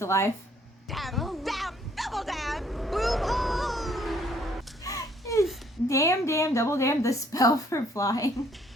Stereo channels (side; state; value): both; normal; correlation 0.63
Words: life. Damn, damn, double damn, boom, oh. Damn, double damn, the spell for flying.